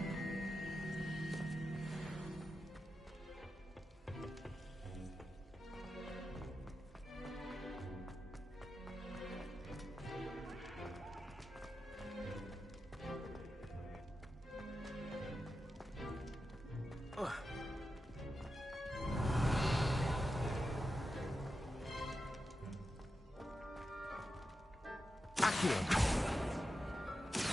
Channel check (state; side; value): normal; both; correlation 0.90